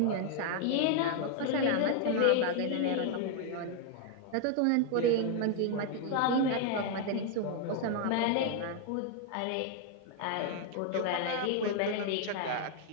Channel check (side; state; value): both; different; correlation 0.00